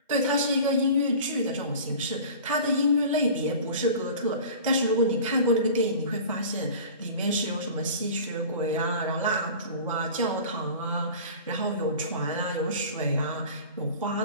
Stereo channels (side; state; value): both; inverted; correlation -0.39